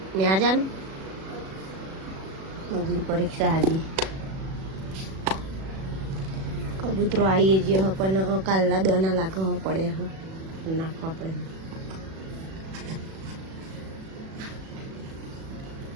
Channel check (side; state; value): left; late; 37 ms